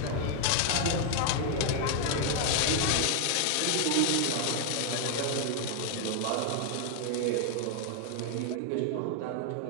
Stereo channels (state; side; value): different; both; correlation 0.00